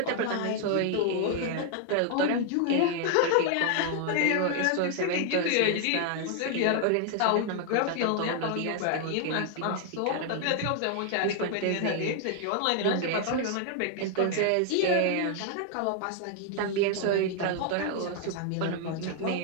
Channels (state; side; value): different; both; correlation 0.00